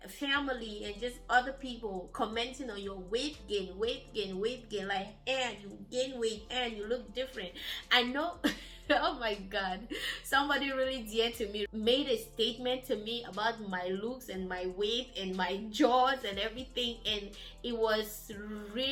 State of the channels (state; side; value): identical; both; correlation 1.00